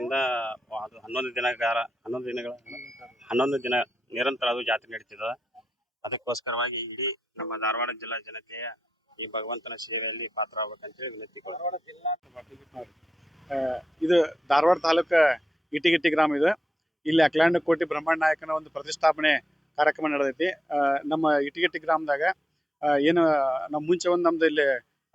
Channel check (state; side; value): normal; both; correlation 0.88